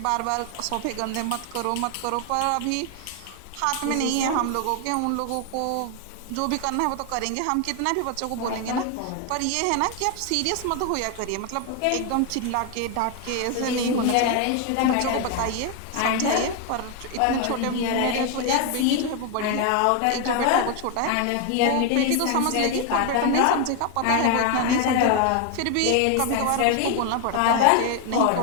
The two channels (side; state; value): both; different; correlation 0.01